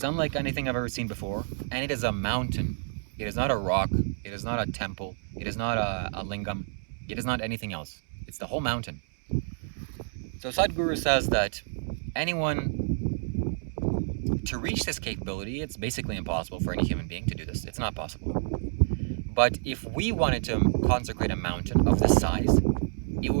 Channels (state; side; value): silent; left; digital silence